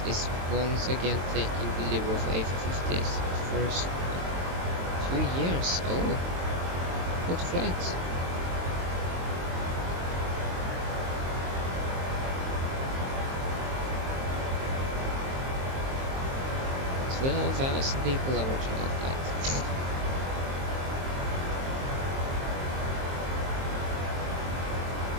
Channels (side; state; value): left; late; 23 ms